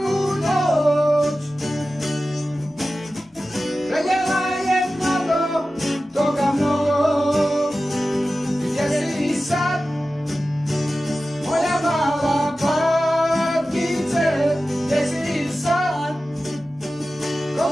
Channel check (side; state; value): both; normal; correlation 0.95